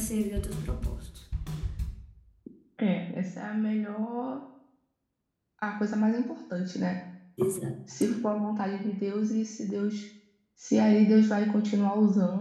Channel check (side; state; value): both; identical; correlation 1.00